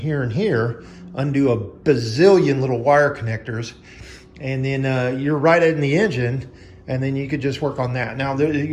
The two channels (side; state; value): both; identical; correlation 1.00